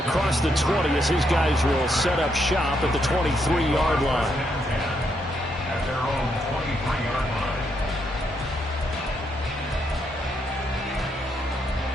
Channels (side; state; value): both; normal; correlation 0.77